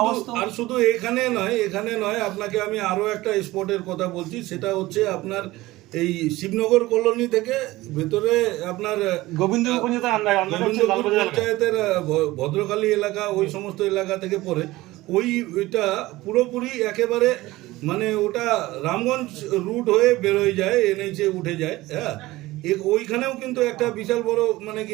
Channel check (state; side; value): quieter; left; 18.5 dB